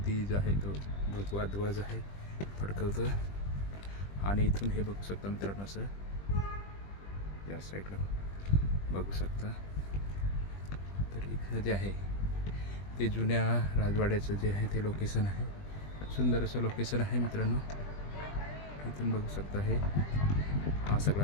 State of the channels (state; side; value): late; right; 20 ms